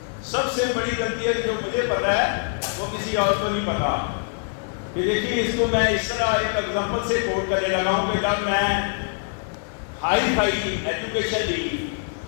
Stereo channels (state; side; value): silent; right; 63 dB below the other